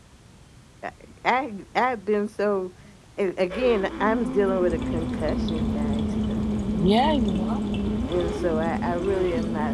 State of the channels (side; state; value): both; identical; correlation 1.00